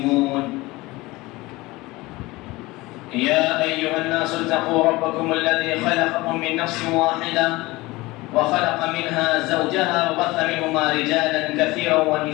يا أيها الناس اتقوا ربكم الذي خلقكم من نفس واحدة وخلق منها زوجها وبث منهما رجالا كثيرا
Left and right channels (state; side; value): quieter; right; 20.9 dB